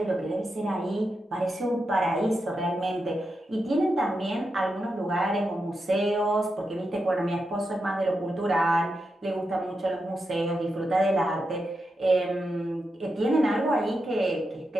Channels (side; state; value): both; normal; correlation 0.87